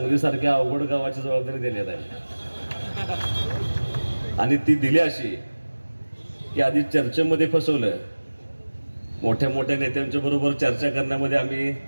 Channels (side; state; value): both; inverted; correlation -1.00